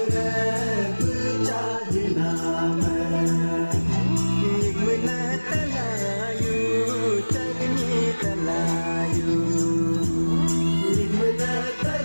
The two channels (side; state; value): both; inverted; correlation -1.00